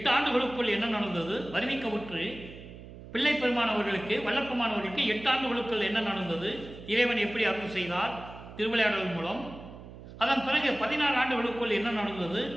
ஆண்டுகளுக்குள் என்ன நடந்தது? வருவிக்கவுற்று பிள்ளை பெருமானவர்களுக்கு வல்லப்பமானவர்களுக்கு 8 ஆண்டுகளுக்குள் என்ன நடந்தது? இறைவன் எப்படி அருள் செய்தார் திருவிளையாடல் மூலம். அதன் பிறகு 16 ஆண்டுகளுக்குள் என்ன நடந்தது?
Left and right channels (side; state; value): right; noise; hum, 15 dB below the sound